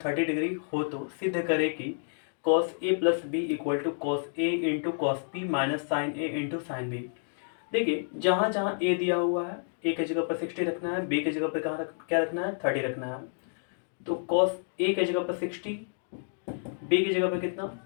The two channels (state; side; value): silent; right; digital silence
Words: degree हो तो सिद्ध करे कि cos a plus b equal to cos a into cos b minus sine a into sine b. देखिए जहाँ जहाँ a दिया हुआ है a की जगह पर 60 रखना है, b की जगह पर क्या रखना है 30 रखना है। तो कॉस a की जगह पर 60, b की जगह पर कितना